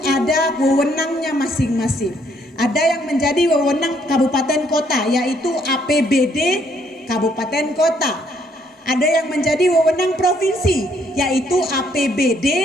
ada wewenangnya masing-masing. Ada yang menjadi wewenang kabupaten kota, yaitu APBD kabupaten kota. Ada yang menjadi wewenang provinsi, yaitu APBD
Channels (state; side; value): normal; both; correlation 0.69